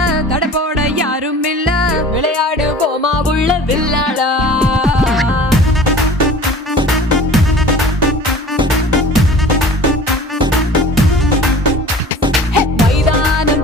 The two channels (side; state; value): both; normal; correlation 0.43